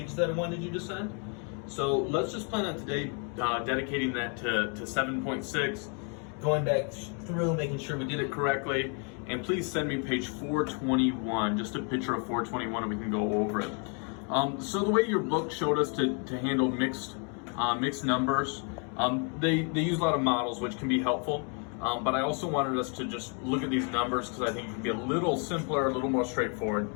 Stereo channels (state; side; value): quieter; right; 38.7 dB